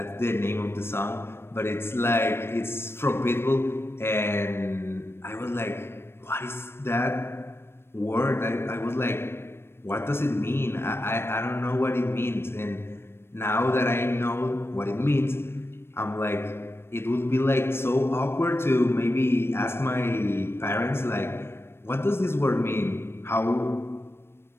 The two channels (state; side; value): late; right; 0.12 ms